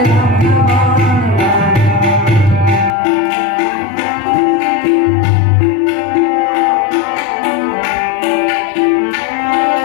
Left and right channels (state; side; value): drops out; right; at 2.9 s